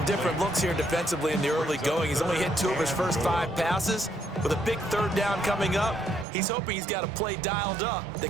different looks here defensively in the early going. He's only hit 2 of his first 5 passes. With a big third down coming up, he's hoping he's got a play dialed up that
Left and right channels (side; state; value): left; drops out; at 6.2 s